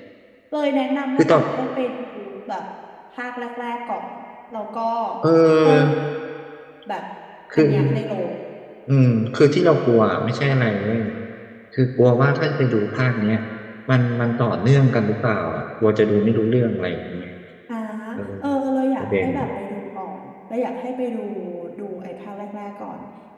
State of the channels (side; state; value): both; identical; correlation 1.00